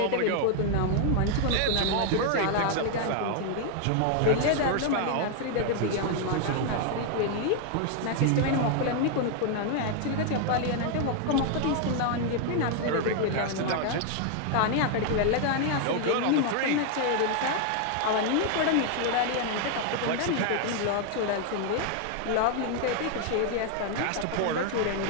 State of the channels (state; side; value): different; both; correlation 0.00